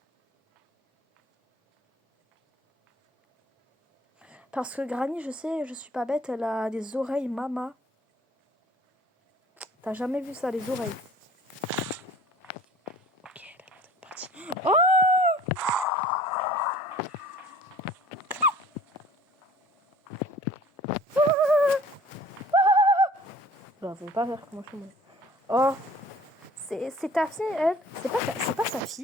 Parce que Granny, je sais, je suis pas bête, elle a des oreilles mama. T'as jamais vu ça, les oreilles? Ok, elle a l'air d'être partie. Oh! Bah, faut pas faire comment je me... Oh! C'est ta fille, elle? C'est pas sa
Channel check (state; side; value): normal; both; correlation 0.50